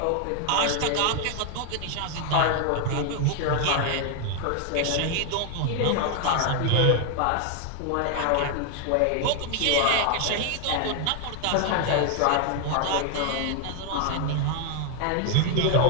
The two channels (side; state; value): both; different; correlation 0.00